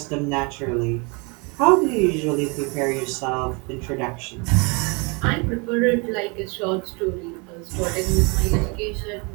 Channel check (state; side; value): quieter; left; 31.0 dB